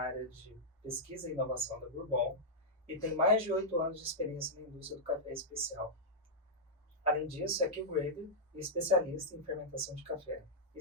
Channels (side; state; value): both; normal; correlation -0.09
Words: de pesquisa e inovação da Bourbon e tem mais de 8 anos de experiência na indústria do café especial. Além disso, é Q-Grader e especialista em fermentação de café e